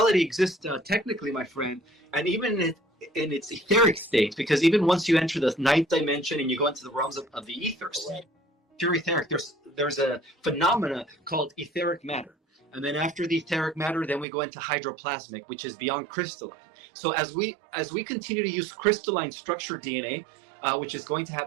exists technically, my friend, and even in its etheric state, because even once you enter the ninth dimension and you go into the realms of the ethers, pure etheric, there's a phenomena called etheric matter. And then after the etheric matter, then we go into hydroplasmic, which is beyond crystalline. So as we continue to use crystalline structured DNA, which is going to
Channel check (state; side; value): drops out; left; at 14.2 s